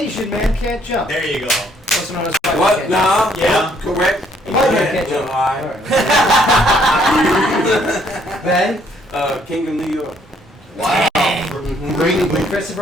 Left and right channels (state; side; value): normal; both; correlation 0.66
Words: man can't jump. There you go. Also known as white man What? can't No. Yeah. Correct. White man can't jump. Ben. King of New York. Wow. Great movie. With